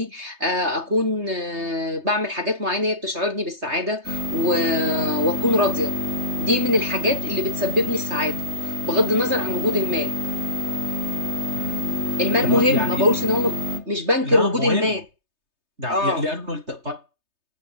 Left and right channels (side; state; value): left; late; 3.2 ms